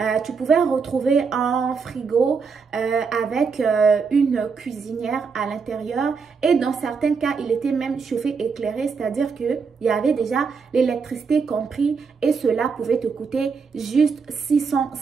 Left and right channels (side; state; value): left; quieter; 5.3 dB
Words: Tu pouvais retrouver un frigo avec une cuisinière à l'intérieur et dans certains cas, il était même chauffé éclairé, c'est-à-dire qu'il y avait déjà l'électricité compris et cela pouvait te coûter juste